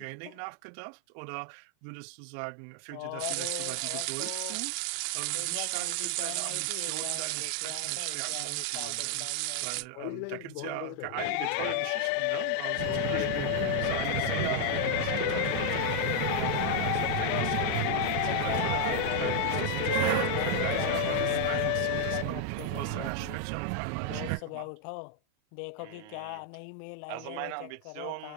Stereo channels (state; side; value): different; both; correlation 0.00